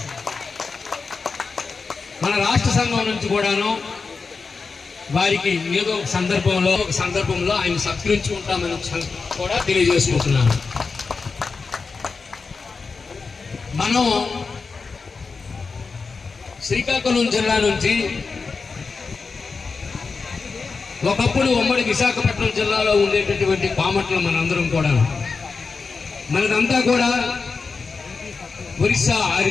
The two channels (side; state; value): right; quieter; 4.6 dB